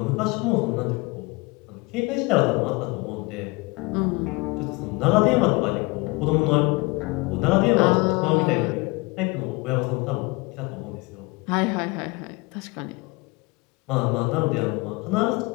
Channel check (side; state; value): right; quieter; 25.8 dB